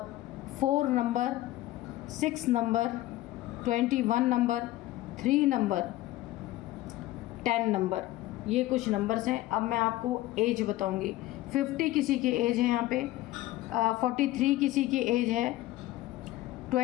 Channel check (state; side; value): quieter; right; 16.4 dB